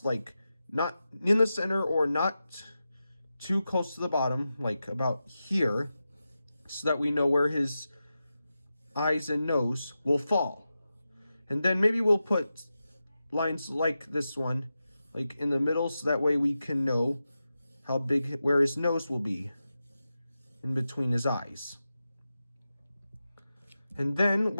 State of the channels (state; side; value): inverted; both; correlation -0.92